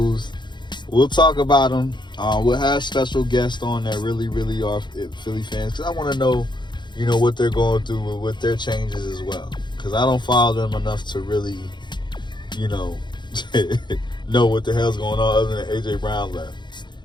We'll talk about them. We'll have special guests on that really, really are Philly fans, because I want to know, what they're going through with their changes as well. Because I don't follow them enough to really, know what the hell's going on, other than A.J. Brown left.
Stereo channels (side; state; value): right; late; 0.22 ms